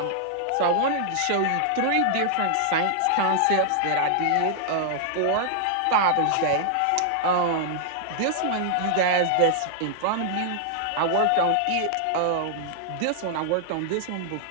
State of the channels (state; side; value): different; both; correlation -0.01